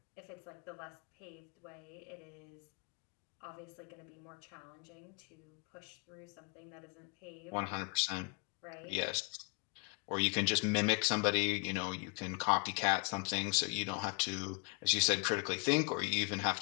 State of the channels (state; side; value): quieter; right; 30.7 dB